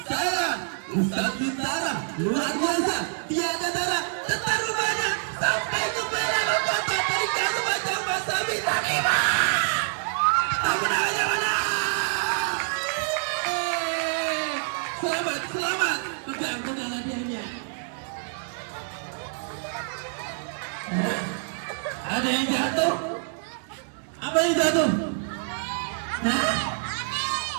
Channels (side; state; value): left; silent; 61 dB below the other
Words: Ustaz Bintara. Luar biasa. Tiada tara. Tetar rumahnya sampai ke Bela kata dari kasus macam bahasa bintang 5. Tepuk tangannya mana? Selamat. Pegang hadiahnya. Ada yang jatuh? Apa yang jatuh?